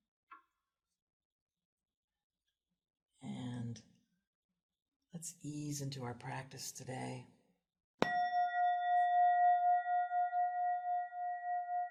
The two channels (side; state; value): both; identical; correlation 1.00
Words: and let's ease into our practice today.